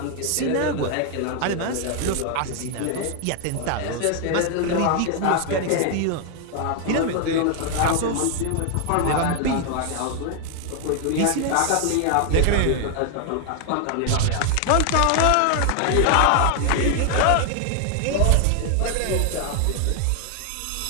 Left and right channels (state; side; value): different; both; correlation 0.00